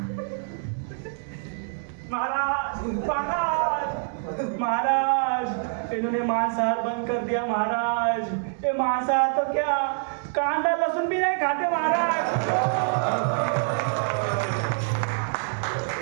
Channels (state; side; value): silent; left; 61 dB below the other